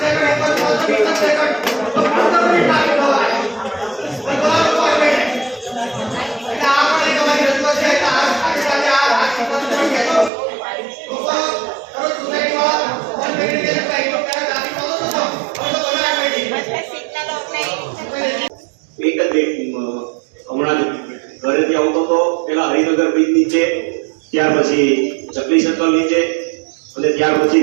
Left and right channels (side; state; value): left; drops out; at 10.3 s